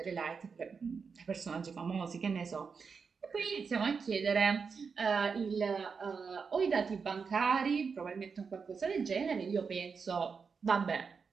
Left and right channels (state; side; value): quieter; left; 5.5 dB